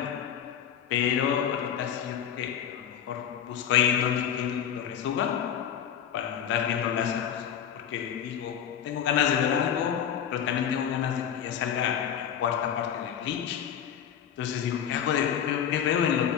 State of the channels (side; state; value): right; quieter; 8.9 dB